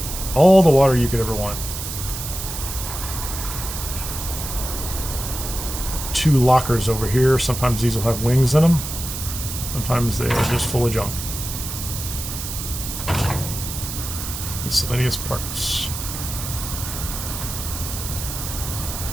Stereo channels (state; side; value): noise; right; hiss, 7 dB below the sound